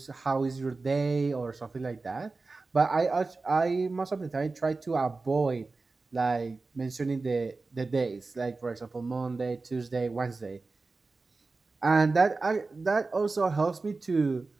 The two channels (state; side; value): quieter; left; 3.7 dB